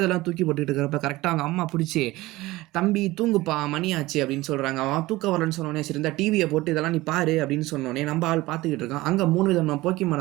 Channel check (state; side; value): quieter; left; 19.0 dB